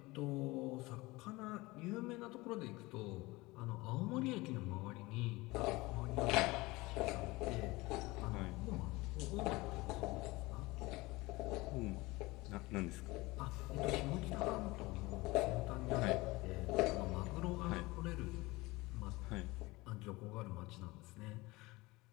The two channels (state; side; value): quieter; right; 21.8 dB